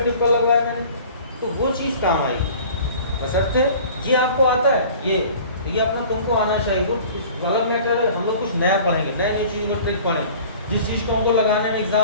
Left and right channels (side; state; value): both; inverted; correlation -0.46